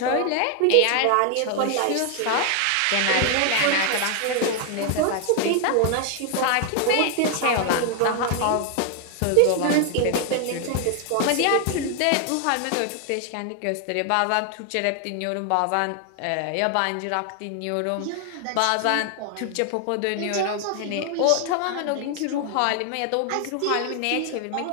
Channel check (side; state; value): both; different; correlation 0.00